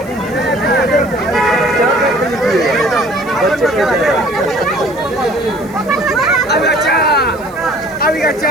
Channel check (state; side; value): noise; right; hiss, 25 dB below the sound